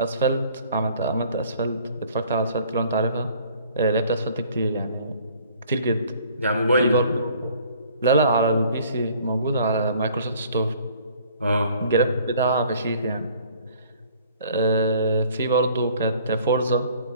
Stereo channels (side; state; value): both; inverted; correlation -0.55